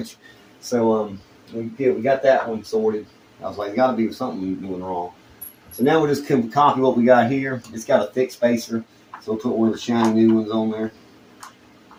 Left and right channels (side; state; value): both; identical; correlation 1.00